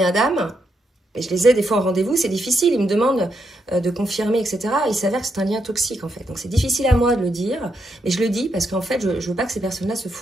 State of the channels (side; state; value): both; normal; correlation 0.81